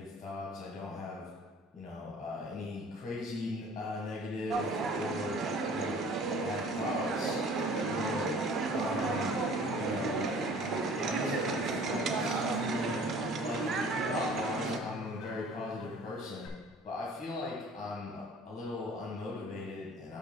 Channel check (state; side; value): normal; both; correlation 0.49